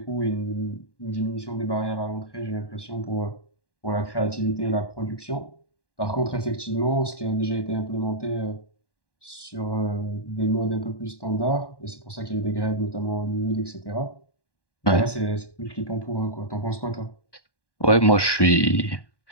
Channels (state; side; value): late; right; 1.1 ms